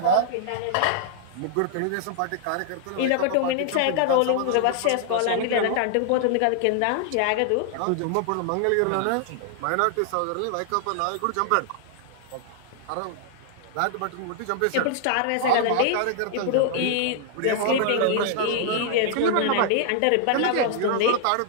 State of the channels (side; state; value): both; different; correlation -0.01